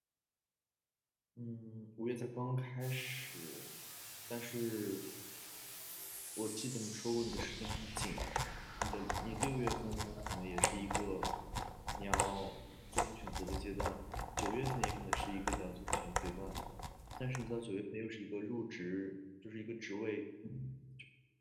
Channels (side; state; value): both; identical; correlation 1.00